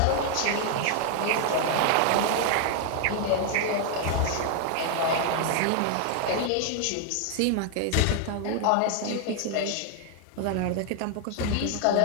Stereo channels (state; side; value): different; both; correlation 0.00